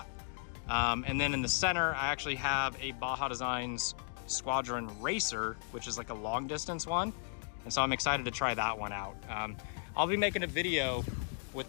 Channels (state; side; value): silent; right; digital silence